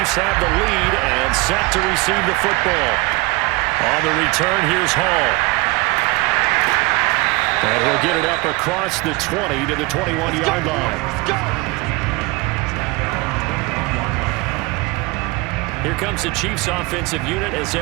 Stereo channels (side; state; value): left; quieter; 23.6 dB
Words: have the lead and set to receive the football. On the return, here's Hall. And he'll get it up across the 20 to the 21-yard line. Here comes the Chiefs offensive unit as